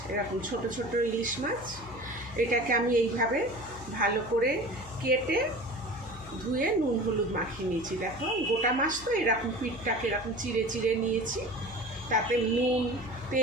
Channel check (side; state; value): left; noise; hum, 17 dB below the sound